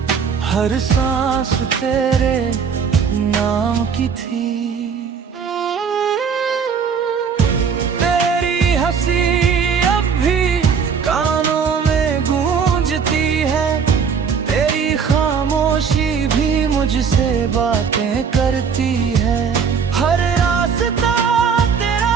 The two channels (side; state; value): left; quieter; 6.4 dB